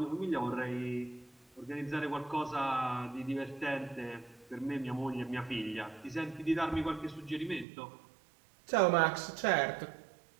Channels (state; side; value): drops out; left; at 7.7 s